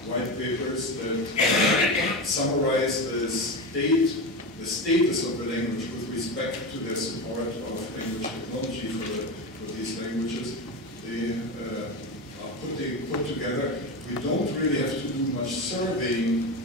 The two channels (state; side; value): normal; both; correlation 0.20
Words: white papers that summarize the status of the language with respect to their support of language technology for these languages. They are put together. We don't really have to do much surveying